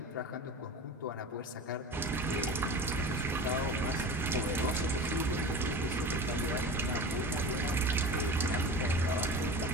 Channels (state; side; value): normal; both; correlation 0.33